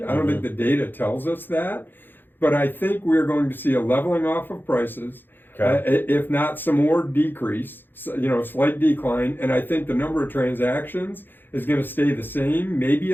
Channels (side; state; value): right; late; 0.096 ms